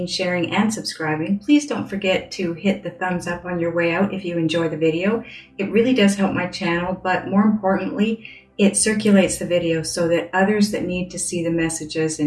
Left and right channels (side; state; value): both; identical; correlation 1.00